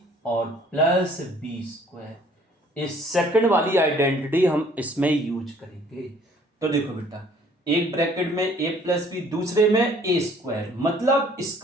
और प्लस बी स्क्वायर। इस सेकंड वाली आइडेंटिटी हम इसमें यूज करेंगे। तो देखो बेटा, एक ब्रैकेट में ए प्लस बी, दूसरे में ए स्क्वायर मतलब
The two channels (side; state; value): both; normal; correlation 0.58